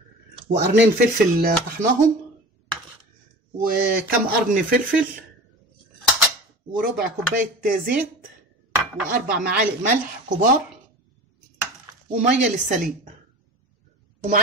وقرنين فلفل طحناهم، وكم قرن فلفل، وربع كوبايه زيت، واربع معالق ملح كبار، وميه للسليق.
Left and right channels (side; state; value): both; normal; correlation 0.36